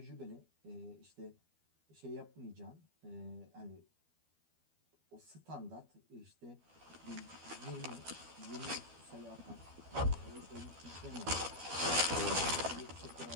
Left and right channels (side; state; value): left; late; 12 ms